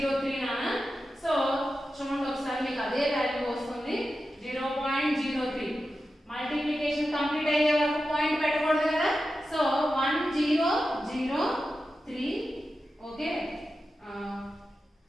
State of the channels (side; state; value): both; normal; correlation 0.92